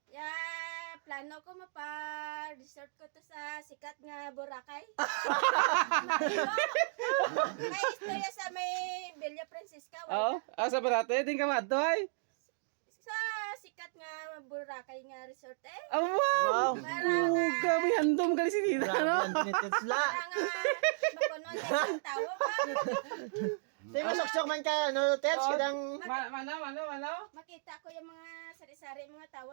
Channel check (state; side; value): silent; left; digital silence